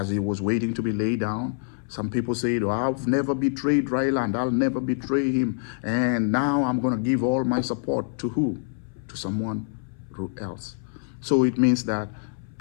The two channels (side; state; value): right; silent; 59 dB below the other